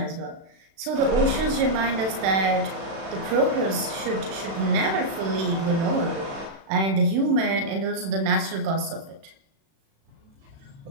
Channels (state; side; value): late; left; 36 ms